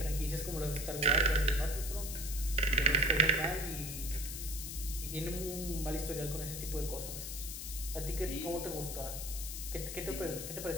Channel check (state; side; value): noise; left; hiss, 6 dB below the sound